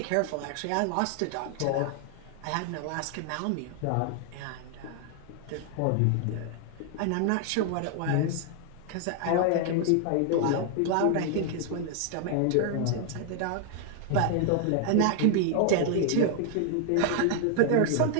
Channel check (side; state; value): both; different; correlation 0.00